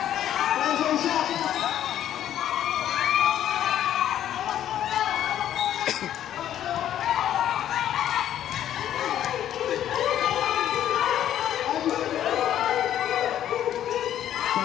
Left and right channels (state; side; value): quieter; right; 11.2 dB